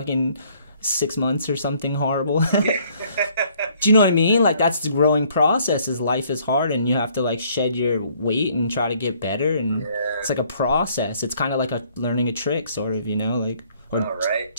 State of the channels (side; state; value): both; inverted; correlation -0.62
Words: 6 months or something horrible. Do you know what I mean? Like that's the growing process. Is life is hard and you have to like shed your weight and try to get better, and it's like a process. It's kind of like learning a trick, sort of, you know, like or